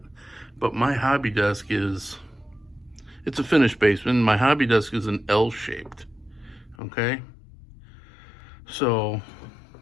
But my hobby desk it's a finished basement. My hobby desk is an L-shaped. Okay, so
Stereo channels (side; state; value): right; drops out; at 6.8 s